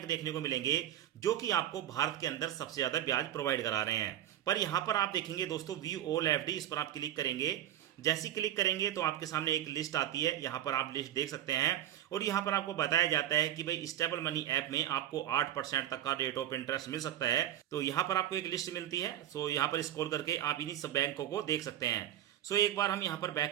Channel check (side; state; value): left; quieter; 12.1 dB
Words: देखने को मिलेंगे जो कि आपको भारत के अंदर सबसे ज्यादा ब्याज प्रोवाइड करा रहे हैं। पर यहाँ पर आप देखेंगे दोस्तों व्यू ऑल एफडी, इस पर आप क्लिक करेंगे। जैसे क्लिक करेंगे तो आपके सामने एक लिस्ट आती है, यहाँ पर आप लिस्ट देख सकते हैं। और यहाँ पर आपको बताया जाता है कि भाई स्टेबल मनी ऐप में आपको 8% तक का रेट ऑफ इंटरेस्ट मिल सकता है। तो यहाँ पर आपको एक लिस्ट मिलती है। सो यहाँ पर स्क्रॉल करके आप इन्हीं सब बैंकों को देख सकते हैं। सो एक बार हम यहाँ पर बैक